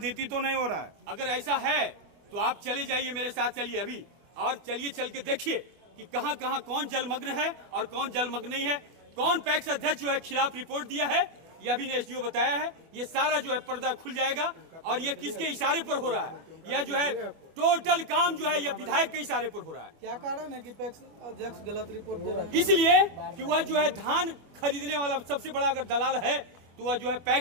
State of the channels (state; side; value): late; left; 25 ms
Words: तो नहीं हो रहा है? अगर ऐसा है तो आप चले जाइए, मेरे साथ चलिए अभी, और चलिए चल के देखिए कि कहाँ कहाँ कौन जलमग्न है और कौन जलमग्न नहीं है, कौन पैक्स अध्यक्ष जो है खिलाफ रिपोर्ट दिया है, यह भी ने एसडीओ बताया है। ये सारा जो है पर्दा खुल जाएगा और ये किसके इशारे पर हो रहा है, यह जो है टोटल काम जो है यह विधायक के इशारे पर हो रहा है। क्या कारण है कि पैक्स अध्यक्ष गलत रिपोर्ट दे रहे हैं? इसलिए कि वह जो है धान खरीदने वाला सबसे बड़ा अगर दलाल है तो वह जो है